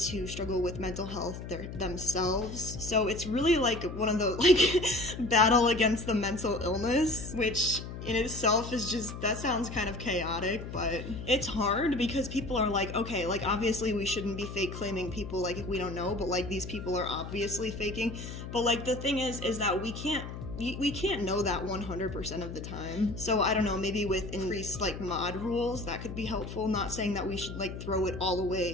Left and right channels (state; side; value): noise; left; hum, 9 dB below the sound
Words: struggle with mental health themselves. So it's really one of the battle against the mental illness, which in itself is just, that sounds kind of chaotic, but it's hard because people are okay, obviously we shouldn't be fake claiming people if we don't know, but these people are obviously faking. But the thing is that we can't know that 100% of the time. So I don't know, maybe with increased mod rules, that could be helpful. Not saying that we should throw it all